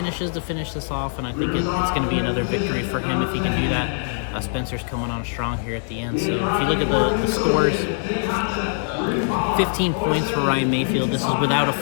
to finish this off, and I think it's going to be another victory for him if he can do that. Spencer's coming on strong here at the end. So if you look at the scores, 15 points for Ryan Mayfield. This is without a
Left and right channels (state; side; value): silent; right; digital silence